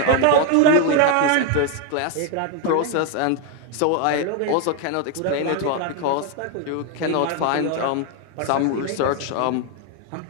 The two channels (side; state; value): both; different; correlation 0.01